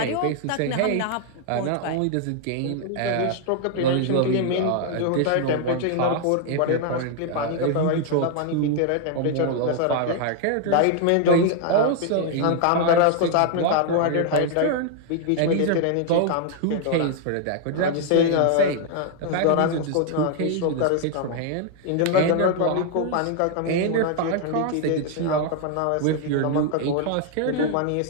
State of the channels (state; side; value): different; both; correlation 0.00